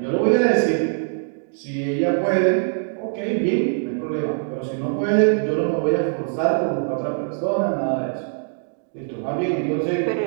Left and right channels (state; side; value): silent; left; digital silence